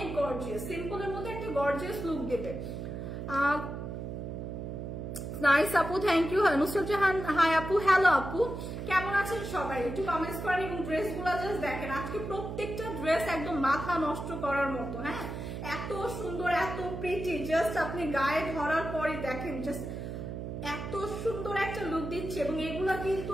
গর্জিয়াস, সিম্পলের মধ্যে একটা গর্জিয়াস লুক দেবে। নাইস আপু, thank you. Nusrat Jahan hi আপু, হ্যালো আপু, কেমন আছেন সবাই? একটু কমেন্টস করেন এবং ড্রেসগুলো জাস্ট দেখেন। আজকে প্রত্যেকটা ড্রেস একদম মাথা নষ্ট করার মতো। হ্যাঁ, এত সুন্দর এত প্রিটি, জাস্ট আপনি গায়ে ধরার পরে দেখেন জাস্ট এত সুন্দর একটা লুক দিচ্ছে এবং এগুলা কিন্তু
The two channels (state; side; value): noise; right; hum, 6 dB below the sound